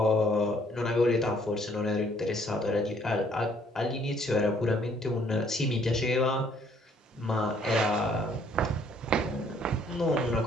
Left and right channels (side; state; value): both; normal; correlation 0.63